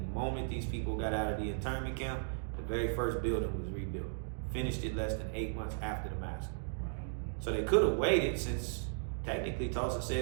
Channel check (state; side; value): silent; left; digital silence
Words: moment these people got out of the internment camp, the very first building was rebuilt. Finished it less than 8 months after the massacre. So they could have waited, since technically Tulsa